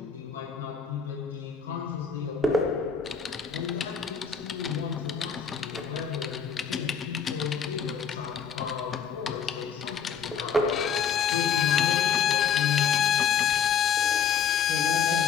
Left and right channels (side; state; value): right; quieter; 7.2 dB